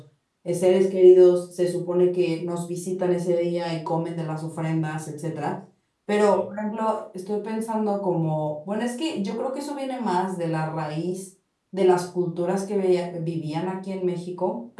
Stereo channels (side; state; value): both; identical; correlation 1.00